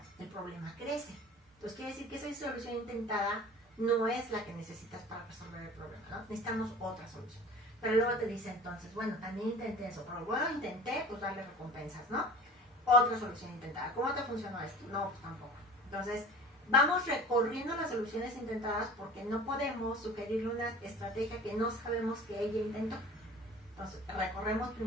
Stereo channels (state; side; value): normal; both; correlation 0.42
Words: el problema crece. Entonces quiere decir que esa solución intentada no es la que necesitas para resolver el problema, ¿no? Necesitamos otra solución. Pero luego te dice entonces, bueno, también intenté eso, pero bueno, intenté, pues darle recompensas, ¿no? Otra solución intentada. ¿Cómo te funcionó esto? No, pues tampoco. Entonces, vamos recorriendo las soluciones intentadas porque no podemos sugerirle una estrategia que no sabemos que ella intentó. Entonces, recorremos